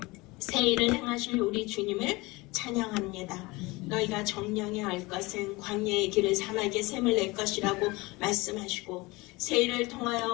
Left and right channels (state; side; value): quieter; right; 22.9 dB